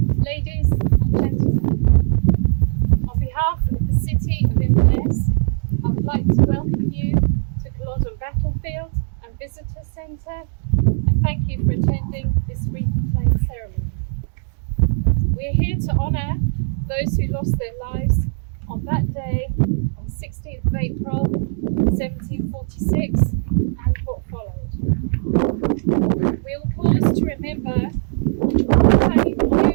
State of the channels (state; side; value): silent; left; digital silence